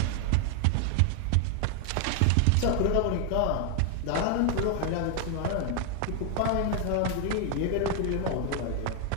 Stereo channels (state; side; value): different; both; correlation 0.00